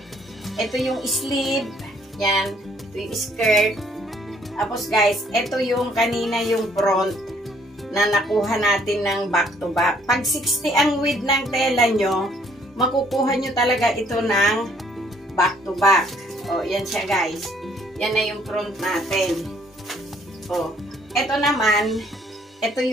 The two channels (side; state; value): both; normal; correlation 0.63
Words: Ito yung sleeve. Yan. Ito yung skirt. Tapos guys, ito yung kanina yung front na nakuha natin ng back to back. Pag 60 ang width ng tela nyo, makukuha nyo talaga ito ng back to back. O, yan siya guys. Yan na yung front natin. O, ito naman, ito